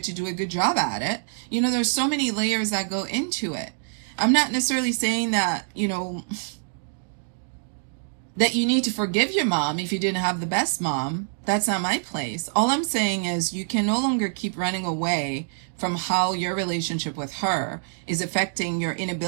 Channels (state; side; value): silent; left; digital silence